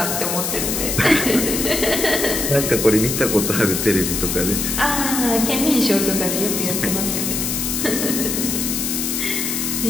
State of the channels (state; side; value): noise; left; hiss, 1 dB below the sound